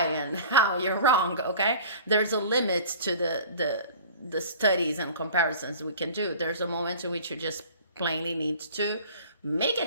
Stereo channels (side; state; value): both; inverted; correlation -0.43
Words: how you're wrong, okay? There's a limit to the studies and comparisons we can do. There's a moment in which you just plainly need to make it